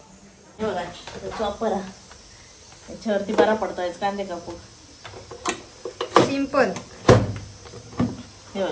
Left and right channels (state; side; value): identical; both; correlation 1.00